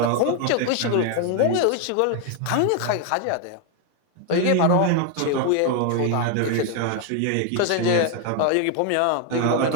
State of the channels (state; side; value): different; both; correlation 0.01